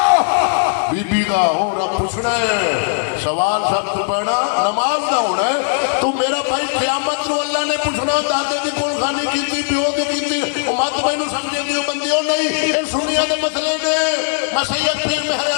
بی بی دا ہو رب پوچھنا ہے سوال سخت پڑھنا نماز دا ہونا ہے تو میرا بھائی قیامت نو اللہ نے پوچھنا دادے دی کول خانی کیتی پیو دی کیتی مت مینوں سمجھے دیو بندیوں نہیں اے سنیا دے مسئلے نے میں سید پیر مہر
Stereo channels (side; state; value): right; silent; 67 dB below the other